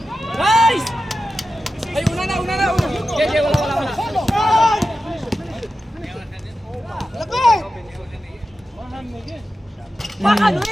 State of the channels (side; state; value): both; normal; correlation 0.92